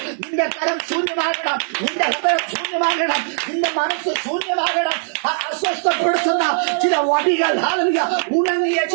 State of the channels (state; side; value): silent; left; digital silence